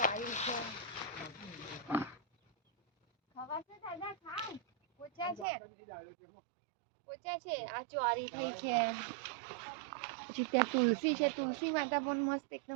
છે, ખવાશે દાદા, ખાવ. પોચા છે, પોચા છે. આ ચોળી થઈ છે, પછી ત્યાં તુલસી છે, તુલસી માતા પણ મસ્ત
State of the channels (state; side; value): drops out; left; at 5.5 s